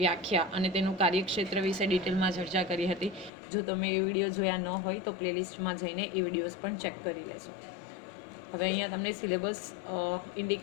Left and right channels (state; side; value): drops out; right; at 3.3 s